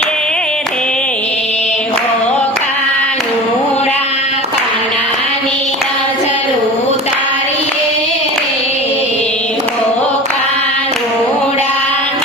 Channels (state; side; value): normal; both; correlation 0.35